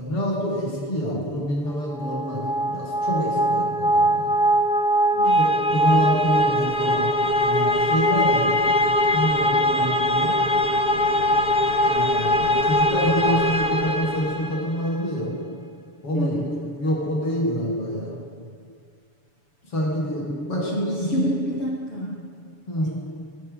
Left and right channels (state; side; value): late; right; 6.9 ms